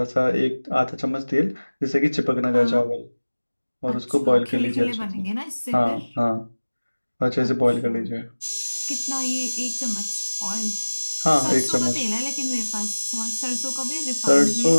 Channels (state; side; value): inverted; both; correlation -1.00